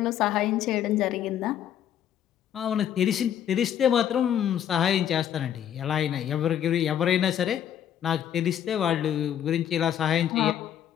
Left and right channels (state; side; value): quieter; right; 10.0 dB